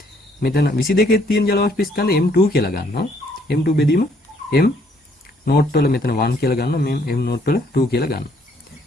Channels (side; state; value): both; normal; correlation 0.65